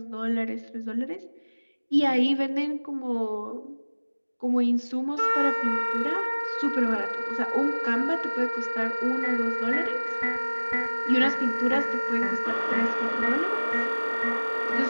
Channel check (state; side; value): inverted; both; correlation -1.00